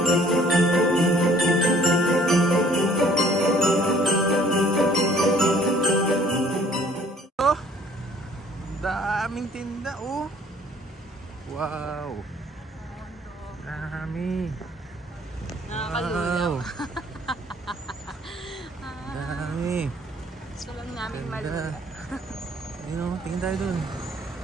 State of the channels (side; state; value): both; normal; correlation 0.57